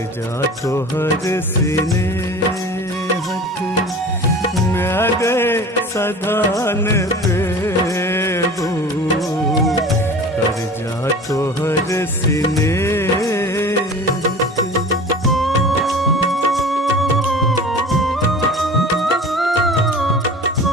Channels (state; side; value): normal; both; correlation 0.39